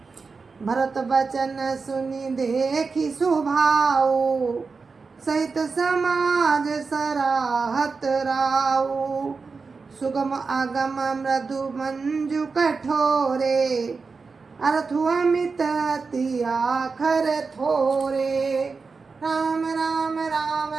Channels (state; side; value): quieter; left; 4.6 dB